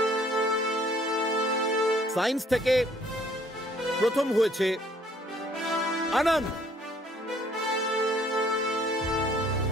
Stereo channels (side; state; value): both; normal; correlation 0.60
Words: সায়েন্স থেকে প্রথম হয়েছে আনন্দ।